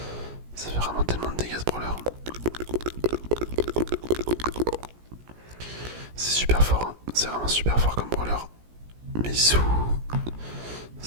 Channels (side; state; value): left; late; 17 ms